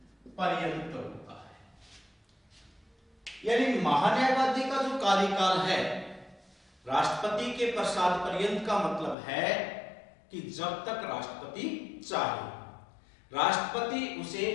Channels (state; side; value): drops out; right; at 9.2 s